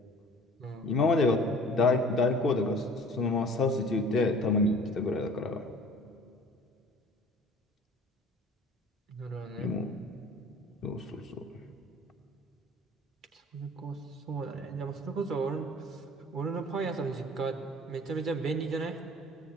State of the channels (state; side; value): normal; both; correlation 0.47